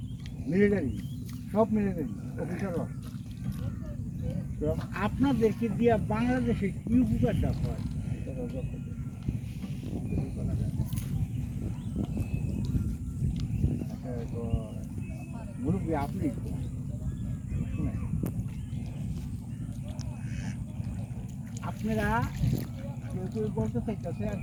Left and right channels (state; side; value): identical; both; correlation 1.00